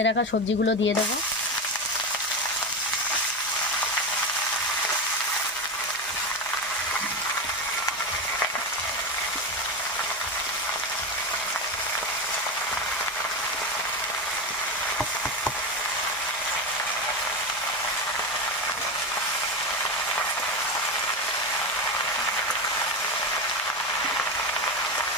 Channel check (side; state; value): both; normal; correlation 0.17